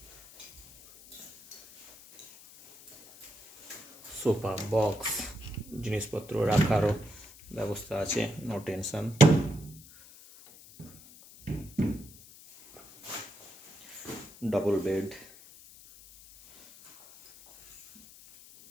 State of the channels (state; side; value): noise; left; hiss, 21 dB below the sound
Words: সোফা, বক্স, জিনিসপত্র রাখারও ব্যবস্থা আছে, no tension. Double bed,